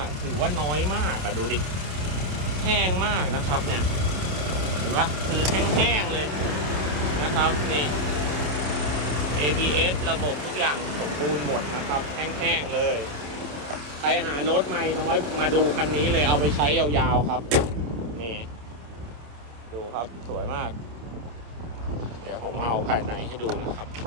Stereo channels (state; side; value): late; left; 27 ms